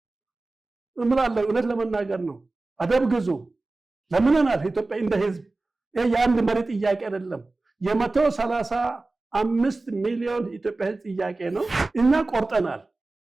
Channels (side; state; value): left; quieter; 3.3 dB